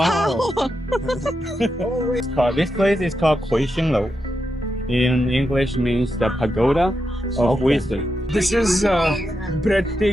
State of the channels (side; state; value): both; normal; correlation 0.86